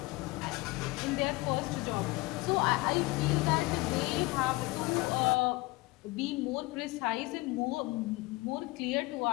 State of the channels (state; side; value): quieter; right; 22.6 dB